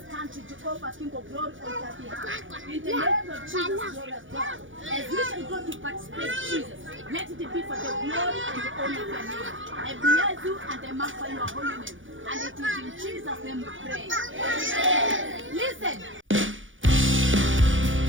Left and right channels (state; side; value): late; left; 0.57 ms